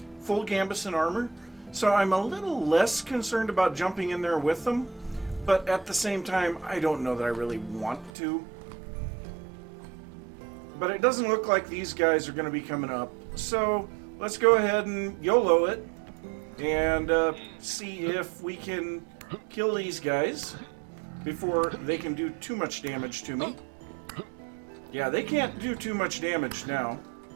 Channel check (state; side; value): drops out; left; at 8.1 s